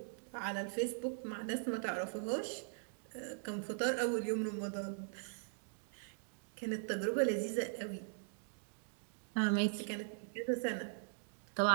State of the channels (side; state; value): left; silent; digital silence